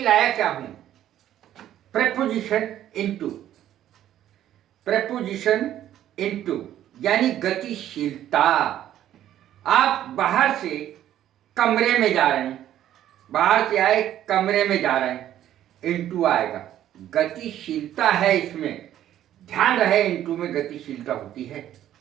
लाया क्या हूं? Preposition into. प्रेपोजिशन इनटू यानी गतिशीलता। आप बाहर से कमरे में जा रहे हैं, बाहर से आए कमरे में जा रहे हैं, इनटू आएगा। गतिशीलता है इसमें, ध्यान रहे इनटू में गतिशीलता होती है।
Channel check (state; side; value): quieter; left; 11.8 dB